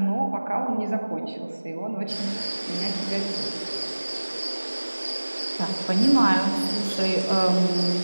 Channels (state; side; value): inverted; both; correlation -1.00